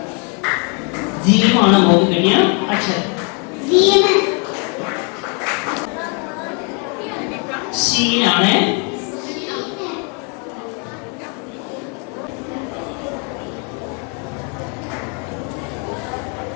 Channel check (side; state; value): right; quieter; 36.6 dB